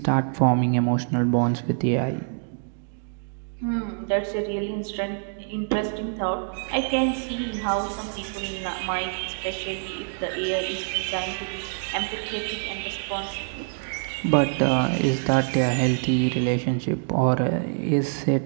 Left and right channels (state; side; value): silent; left; 60 dB below the other